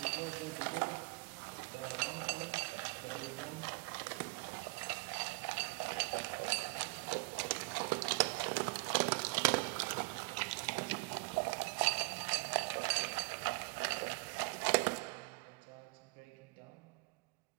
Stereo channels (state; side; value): quieter; left; 30.1 dB